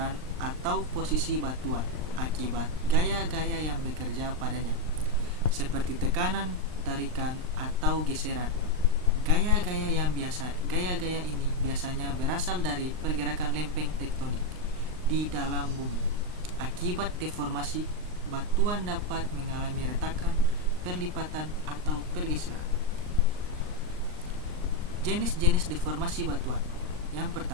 atau posisi batuan akibat gaya-gaya yang bekerja padanya, seperti tekanan, tarikan, atau geseran. Gaya-gaya ini biasanya berasal dari pergerakan lempeng tektonik di dalam bumi. Akibat deformasi, batuan dapat mengalami retakan, perlipatan, atau pergeseran. Jenis-jenis deformasi batuan. Yang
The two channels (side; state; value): left; late; 39 ms